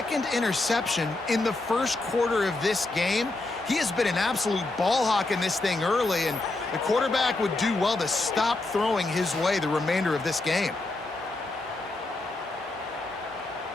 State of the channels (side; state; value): right; quieter; 3.0 dB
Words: interception in the first quarter of this game. He has been an absolute ball hawk in this thing early, and the quarterback would do well to stop throwing his way the remainder of this game.